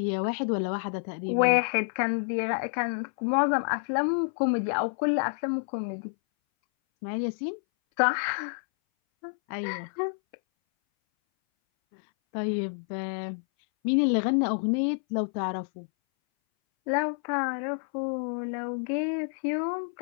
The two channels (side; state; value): right; silent; 59 dB below the other